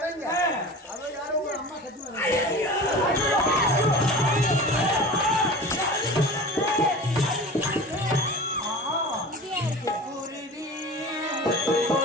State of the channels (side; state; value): both; normal; correlation 0.36